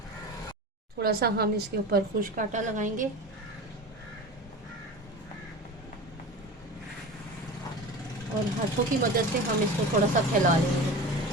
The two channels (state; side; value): normal; both; correlation 0.32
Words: थोड़ा सा हम इसके ऊपर खुश्क आटा लगाएंगे और हाथों की मदद से हम इसको थोड़ा सा फैला लेंगे